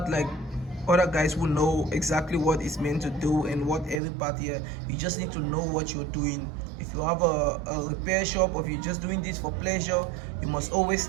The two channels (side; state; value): left; drops out; at 4.0 s